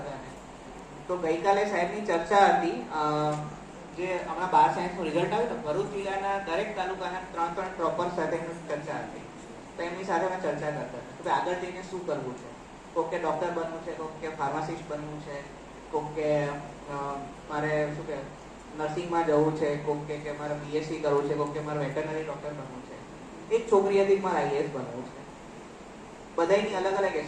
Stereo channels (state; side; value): identical; both; correlation 1.00